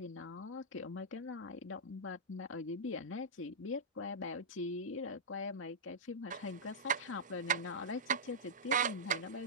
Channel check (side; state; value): both; normal; correlation -0.11